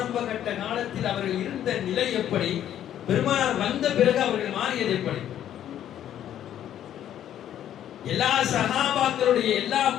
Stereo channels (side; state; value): right; quieter; 10.9 dB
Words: கட்ட காலத்தில் அவர்கள் இருந்த நிலை எப்படி, பெருமானார் வந்த பிறகு அவர்கள் மாறியது எப்படி? எல்லா சஹாபாக்களுடைய எல்லா